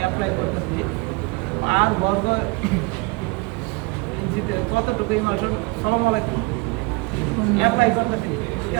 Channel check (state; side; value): quieter; left; 27.0 dB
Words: করতেছি আর বর্গ ইঞ্চিতে কতটুকু ইমালশন সালাম আলাইকুম অ্যাপ্লাই করতেছি, ঠিক